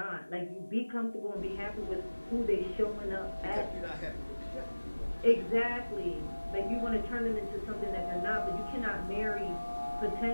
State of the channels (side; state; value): both; inverted; correlation -1.00